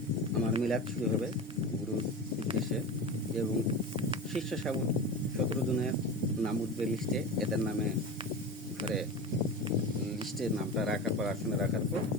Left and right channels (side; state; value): both; normal; correlation 0.28